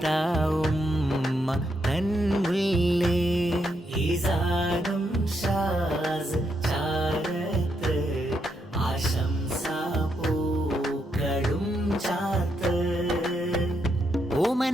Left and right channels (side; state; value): both; normal; correlation 0.79